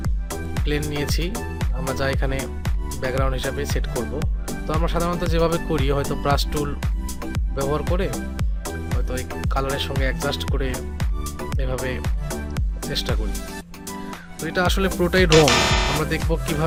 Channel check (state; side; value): identical; both; correlation 1.00